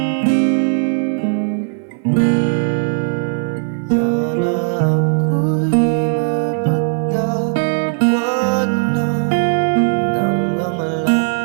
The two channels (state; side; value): silent; left; 58 dB below the other